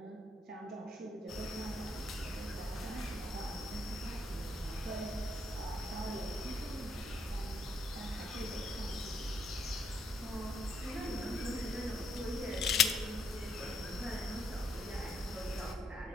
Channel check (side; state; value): both; normal; correlation 0.72